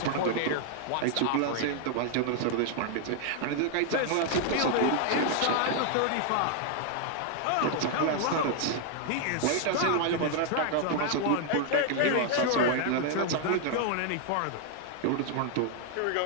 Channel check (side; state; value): both; different; correlation 0.00